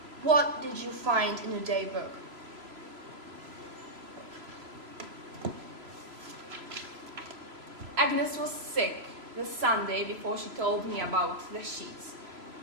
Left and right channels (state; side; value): late; left; 3.0 ms